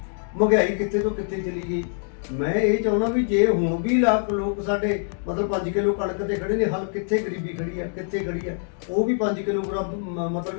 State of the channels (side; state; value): right; silent; digital silence